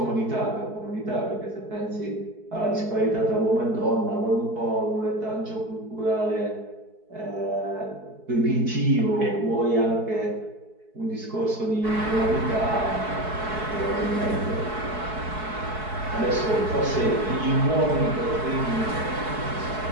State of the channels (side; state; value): left; late; 4.6 ms